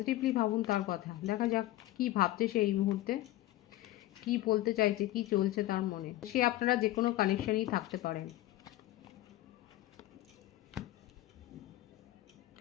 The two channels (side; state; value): right; quieter; 15.8 dB